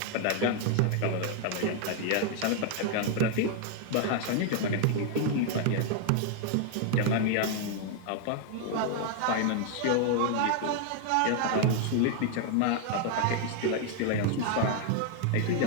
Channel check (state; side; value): different; both; correlation 0.00